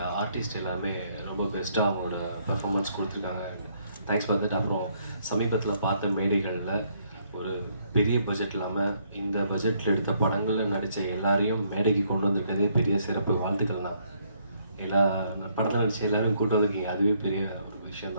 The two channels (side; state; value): both; inverted; correlation -0.70